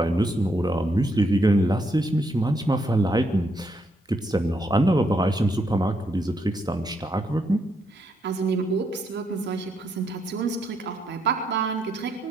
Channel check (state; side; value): normal; both; correlation 0.77